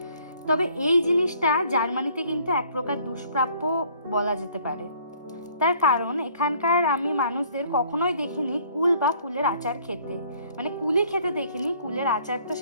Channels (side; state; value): both; inverted; correlation -0.59